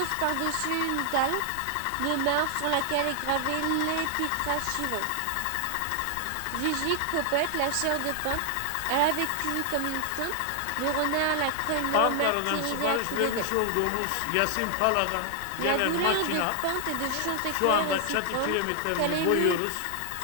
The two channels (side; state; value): both; different; correlation 0.00